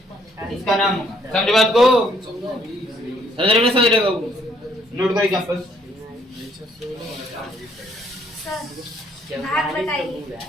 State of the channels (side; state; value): both; normal; correlation 0.66